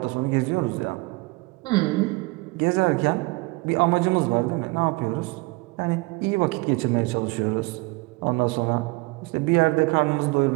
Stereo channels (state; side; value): quieter; left; 25.2 dB